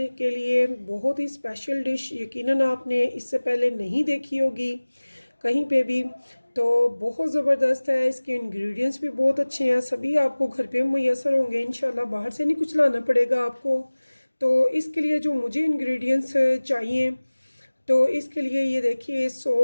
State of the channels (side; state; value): both; inverted; correlation -1.00